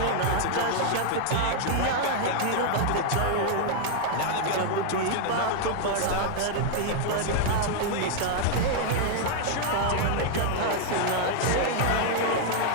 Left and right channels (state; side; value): different; both; correlation 0.00